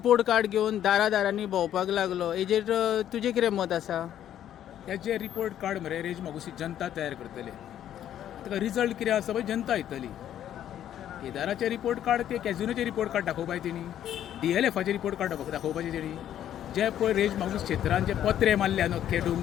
कार्ड घेवन दारांनी भोंवपाक लागलो. हेजेर तुजें कितें मत आसा? हेजे रिपोर्ट कार्ड मरे रेज मागुसी जनता तयार करतले. ताका रिजल्ट कितें आसा पळय जनता येतली. केदाराचे रिपोर्ट कार्ड ते कॅझिनोचे रिपोर्ट कार्ड दाखोवपाय तेणी, DLFाचे रिपोर्ट कार्ड दाखोवपाचे तेणी. जे पळय रेज मागूस क्षेत्रांत जे पत्रे मारल्या अख्खे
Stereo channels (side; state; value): right; quieter; 10.9 dB